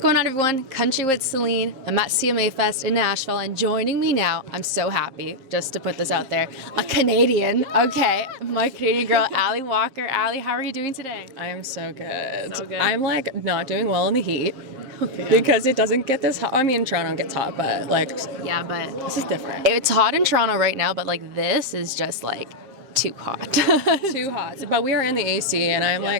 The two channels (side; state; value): left; late; 7.6 ms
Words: on, everyone? Country with Celine. I'm at CMA Fest in Nashville, and joining me now, I'm so happy, just to put this out there, a Canadian, okay, my Canadian girl, ALLI Walker. ALLI, how are you doing today? I am so good. So good. I'm like not doing well in the heat because it doesn't get this hot. I mean, Toronto gets hot, but like, Yeah, but this is different. it's hot in Toronto right now, but like this is just like too hot. Too hot. But we are in the AC, and